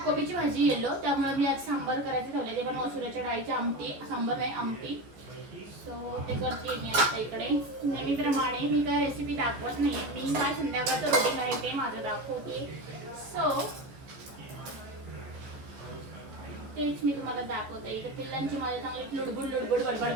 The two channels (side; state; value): left; late; 14 ms